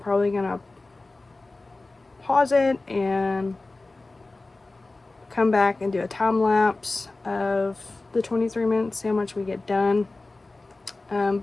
gonna pause it and come back and do a time lapse of the 23 minutes, see how much we get done.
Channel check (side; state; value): right; quieter; 3.2 dB